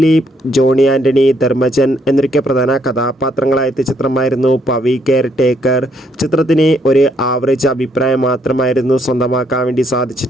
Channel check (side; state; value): both; normal; correlation 0.71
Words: ജോണി ആൻ്റണി, ധർമ്മജൻ എന്നൊക്കെ പ്രധാന കഥാപാത്രങ്ങളായ ചിത്രമായിരുന്നു പവി കെയർ ടേക്കർ. ചിത്രത്തിന് ഒരു ആവറേജ് അഭിപ്രായം മാത്രമായിരുന്നു സ്വന്തമാക്കാൻ വേണ്ടി